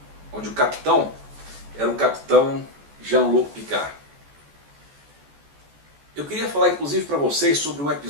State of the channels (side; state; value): left; late; 14 ms